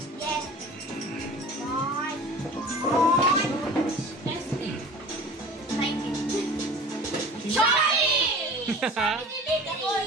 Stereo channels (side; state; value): both; normal; correlation 0.41